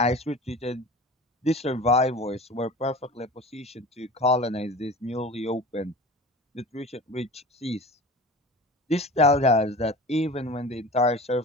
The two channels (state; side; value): normal; both; correlation 0.37